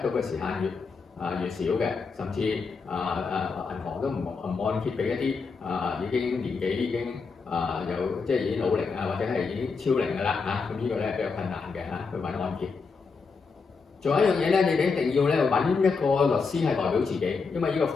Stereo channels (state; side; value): quieter; right; 4.9 dB